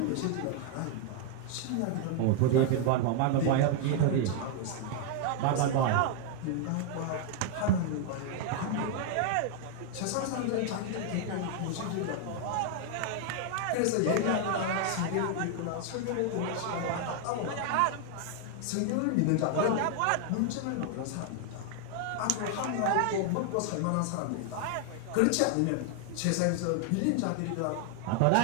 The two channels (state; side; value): different; both; correlation 0.00